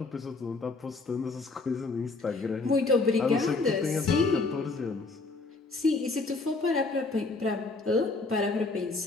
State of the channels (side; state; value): right; quieter; 3.7 dB